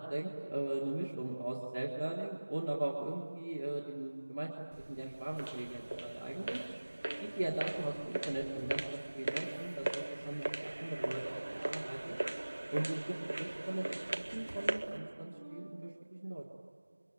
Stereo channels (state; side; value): inverted; both; correlation -1.00